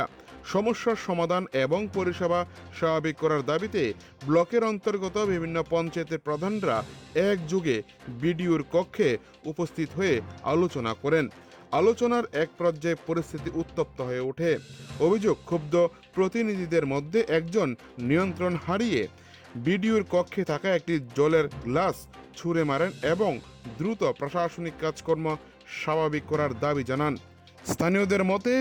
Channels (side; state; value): both; identical; correlation 1.00